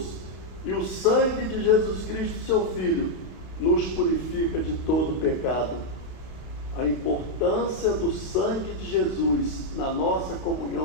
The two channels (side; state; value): right; late; 31 ms